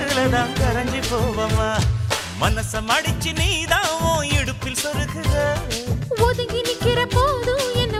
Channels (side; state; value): both; identical; correlation 1.00